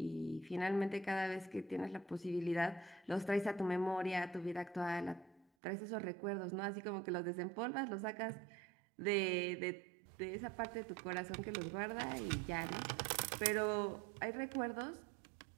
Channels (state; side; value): drops out; left; at 5.5 s